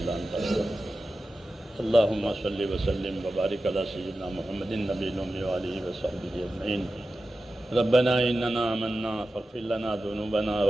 انت، استغفرک. اللہم صلی وسلم وبارک علی سیدنا محمد النبی الأمی وآلہ وصحبہ اجمعین. ربنا اننا آمنا فاغفر لنا ذنوبنا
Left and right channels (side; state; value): both; normal; correlation 0.93